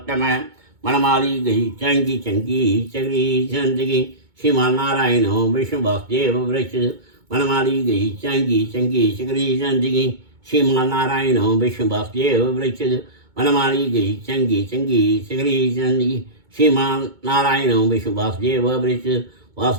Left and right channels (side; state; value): left; late; 2.2 ms